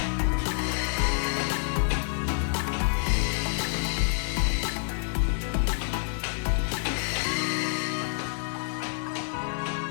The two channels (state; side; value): silent; right; 59 dB below the other